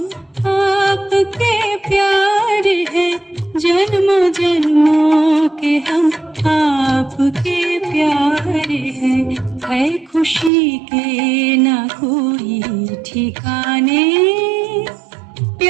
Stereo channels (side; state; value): left; drops out; at 10.5 s